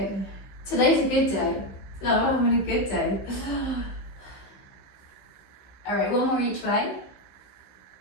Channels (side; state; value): right; late; 15 ms